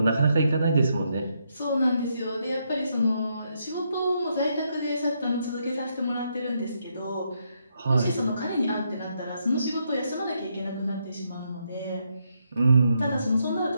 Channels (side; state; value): both; inverted; correlation -0.78